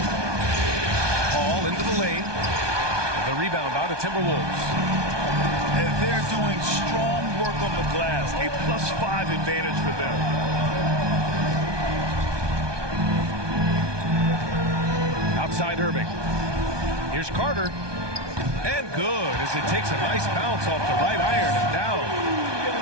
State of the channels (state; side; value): late; left; 1.2 ms